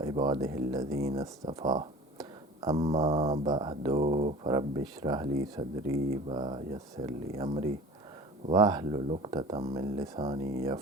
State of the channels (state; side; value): normal; both; correlation 0.40